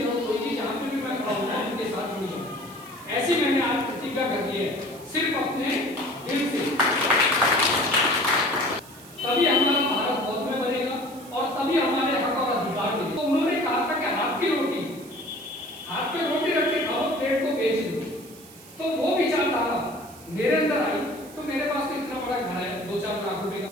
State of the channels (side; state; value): right; noise; hiss, 20 dB below the sound